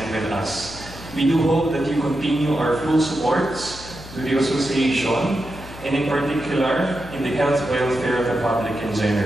with us. We do hope that you continue our full supports to the association and in particular in the health welfare of the public in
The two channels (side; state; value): left; noise; hum, 15 dB below the sound